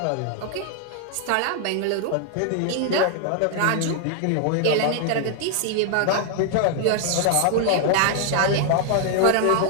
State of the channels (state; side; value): different; both; correlation 0.00